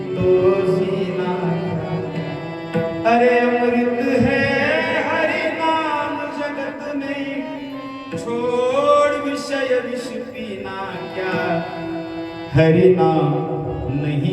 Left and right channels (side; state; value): both; identical; correlation 1.00